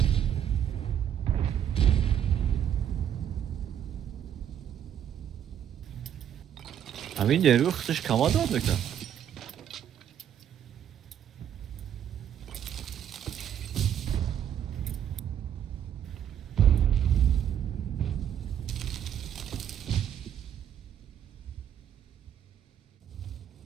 همین نیروی خودش کمال داد بکنم.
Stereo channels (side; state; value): left; quieter; 9.6 dB